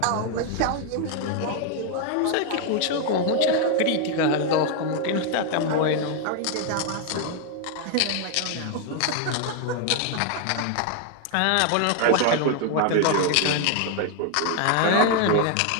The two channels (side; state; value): both; different; correlation 0.00